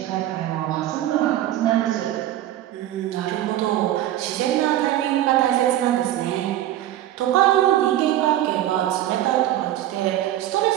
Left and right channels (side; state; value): left; quieter; 13.1 dB